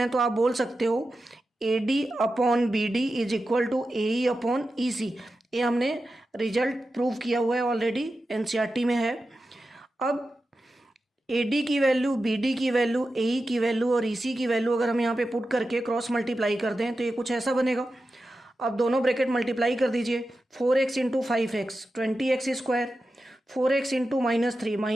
तो आप बोल सकते हो A D upon B D is equal to A E upon E C. ये हमने रिजल्ट प्रूव किया हुआ है ऑलरेडी, एनसीईआरटी में है। अब ए डी की वैल्यू, बी डी की वैल्यू, ए ई की वैल्यू और ई सी की वैल्यू अगर हम यहाँ पे पुट करके क्रॉस मल्टीप्लाई कर दें तो ये कुछ ऐसा बनेगा। अब दोनों ब्रैकेट मल्टीप्लाई कर दीजिए, 4x into 5x 20x square, 4x into -3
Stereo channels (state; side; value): normal; both; correlation 0.92